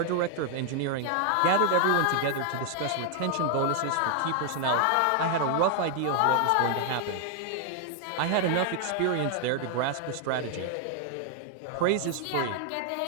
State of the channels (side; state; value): both; different; correlation 0.00